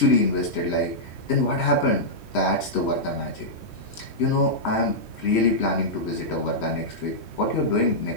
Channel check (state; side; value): late; right; 3.1 ms